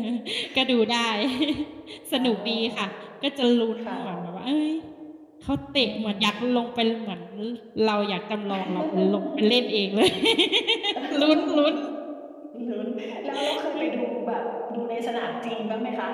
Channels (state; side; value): identical; both; correlation 1.00